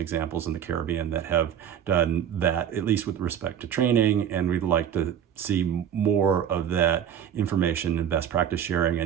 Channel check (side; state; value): left; quieter; 9.1 dB